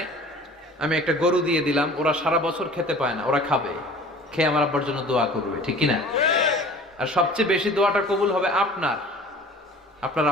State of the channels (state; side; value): normal; both; correlation 0.45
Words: আমি একটা গরু দিয়ে দিলাম, ওরা সারা বছর খেতে পায় না, ওরা খাবে, খেয়ে আমার আব্বার জন্য দোয়া করবে, ঠিক কিনা? আর সবচেয়ে বেশি দোয়াটা কবুল হবে আপনার